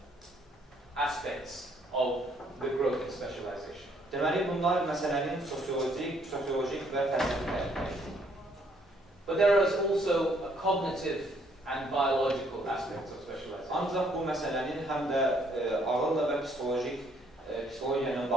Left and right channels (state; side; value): normal; both; correlation 0.67